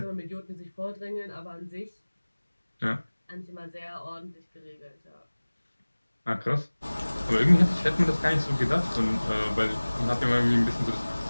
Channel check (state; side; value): inverted; both; correlation -1.00